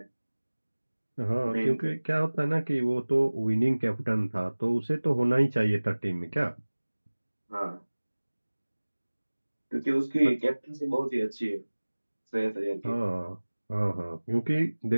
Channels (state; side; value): inverted; both; correlation -1.00